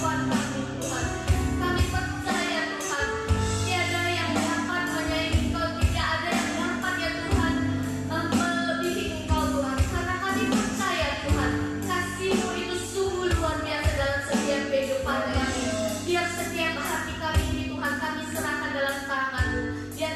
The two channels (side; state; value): both; identical; correlation 1.00